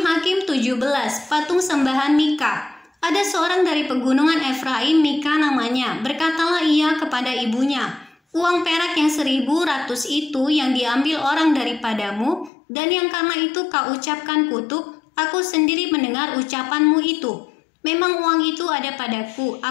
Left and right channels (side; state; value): right; drops out; at 12.5 s